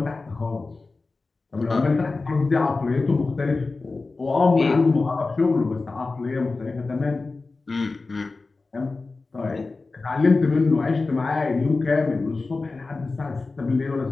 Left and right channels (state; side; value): quieter; right; 3.7 dB